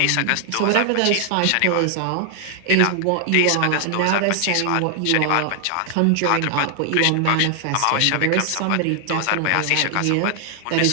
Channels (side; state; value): both; different; correlation 0.00